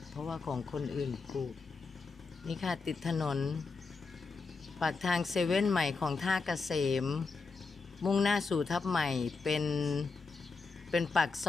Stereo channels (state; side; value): quieter; right; 4.4 dB